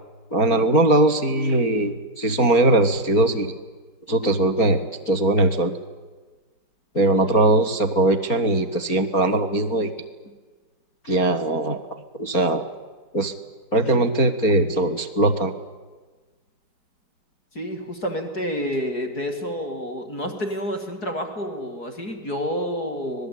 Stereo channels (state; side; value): late; right; 4.4 ms